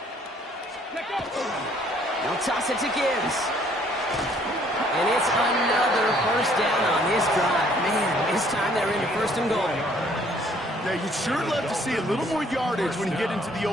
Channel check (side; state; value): both; normal; correlation 0.62